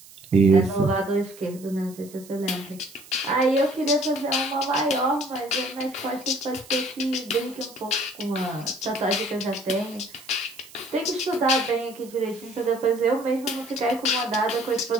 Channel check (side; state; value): right; noise; hiss, 21 dB below the sound